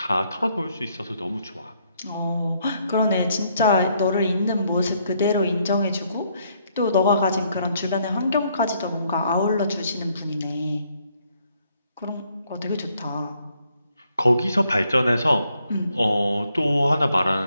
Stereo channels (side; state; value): both; inverted; correlation -0.71